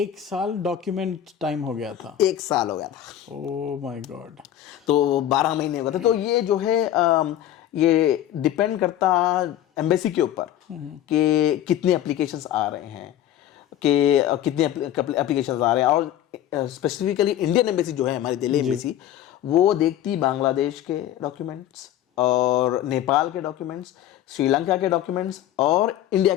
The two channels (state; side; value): quieter; right; 11.8 dB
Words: साल डॉक्यूमेंट टाइम हो गया था। 1 साल हो गया था। Oh my God. तो 12 महीने हो गए थे। तो ये जो है ये डिपेंड करता एम्बेसी के ऊपर कि कितने एप्लीकेशंस आ रहे हैं, कि कितने एप्लीकेशंस आ रहे हैं। और स्पेसिफिकली इंडियन एम्बेसी जो है हमारी दिल्ली एम्बेसी, वो देखती बांग्लादेश के डॉक्यूमेंट्स और नेपाल के डॉक्यूमेंट्स, श्रीलंका के डॉक्यूमेंट्स और इंडिया